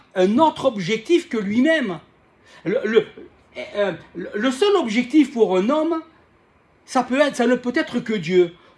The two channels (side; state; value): both; identical; correlation 1.00